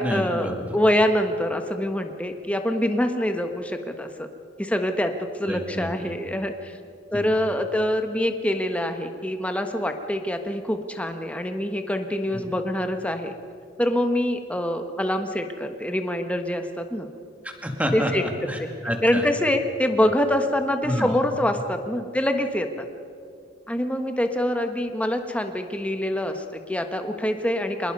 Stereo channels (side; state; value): both; normal; correlation 0.79